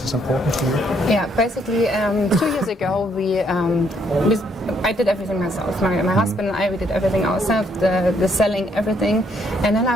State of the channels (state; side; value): normal; both; correlation 0.70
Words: is important to you? Yeah, basically 2 years ago I did everything myself. My husband and I, we did everything ourselves, the selling, everything. And then